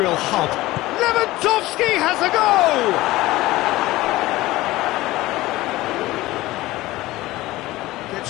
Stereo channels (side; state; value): right; quieter; 18.1 dB